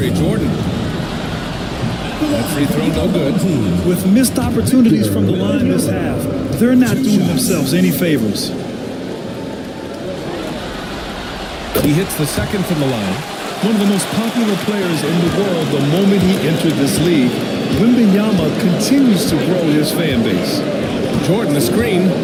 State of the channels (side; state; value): both; identical; correlation 1.00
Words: Jordan. That free throw no good. With missed opportunities from the line this half, they're not doing themselves any favors. He hits the second from the line. One of the most popular players in the world the moment he entered this league, Wembanyama continues to grow his fan base. Jordan, the screen